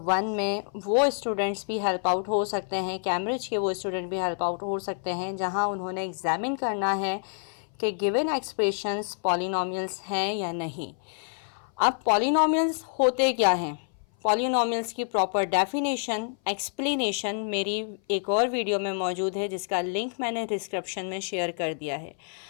1 में वो स्टूडेंट्स भी हेल्प आउट हो सकते हैं, कैम्ब्रिज के वो स्टूडेंट भी हेल्प आउट हो सकते हैं जहां उन्होंने एग्जामिन करना है कि गिवन एक्सप्रेशंस पॉलिनोमियल्स हैं या नहीं। अब पॉलिनोमियल्स होते क्या हैं, पॉलिनोमियल्स की प्रॉपर डेफिनेशन एक्सप्लेनेशन मेरी एक और वीडियो में मौजूद है जिसका लिंक मैंने डिस्क्रिप्शन में शेयर कर दिया है।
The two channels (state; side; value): silent; right; 57 dB below the other